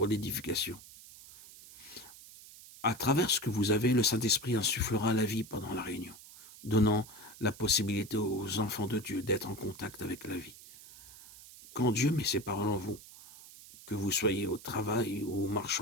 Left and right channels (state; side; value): noise; right; hiss, 18 dB below the sound